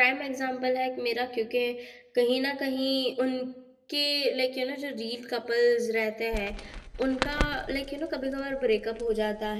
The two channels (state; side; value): identical; both; correlation 1.00